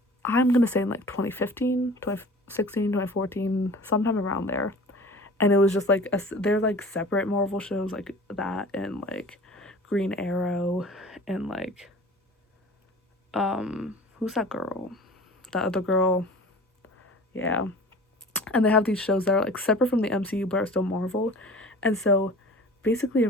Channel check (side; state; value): both; normal; correlation 0.42